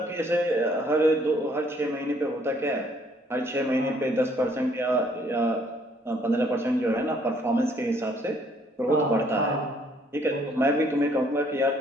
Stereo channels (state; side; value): normal; both; correlation 0.64